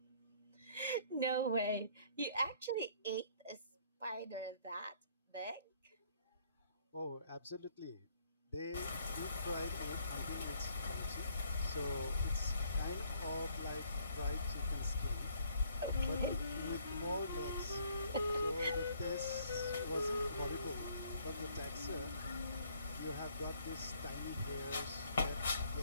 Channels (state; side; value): inverted; both; correlation -0.63